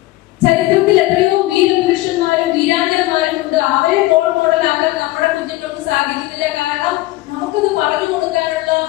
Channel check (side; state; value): right; quieter; 18.2 dB